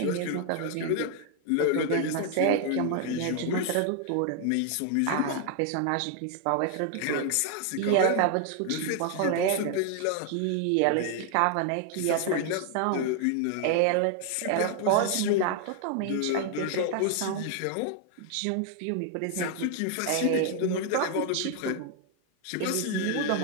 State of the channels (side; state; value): both; different; correlation 0.00